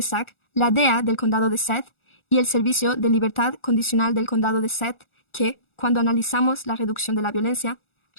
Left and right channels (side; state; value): right; late; 1.4 ms